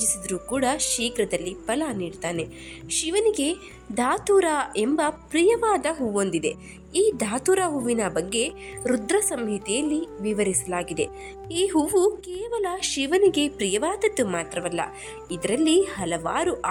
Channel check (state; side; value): identical; both; correlation 1.00